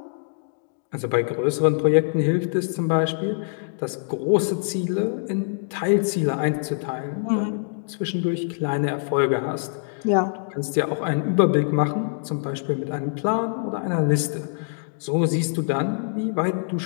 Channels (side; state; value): right; silent; digital silence